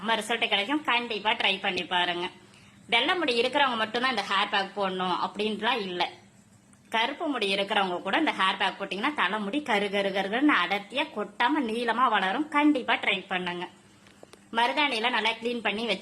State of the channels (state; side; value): identical; both; correlation 1.00